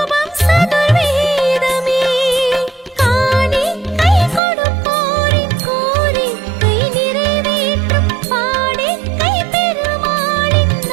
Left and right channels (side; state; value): left; drops out; at 4.4 s